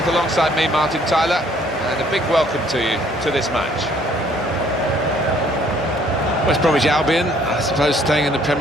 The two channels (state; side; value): normal; both; correlation 0.62